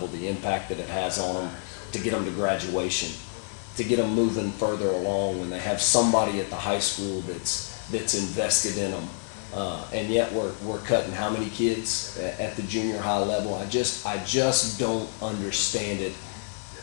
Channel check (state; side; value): silent; right; 57 dB below the other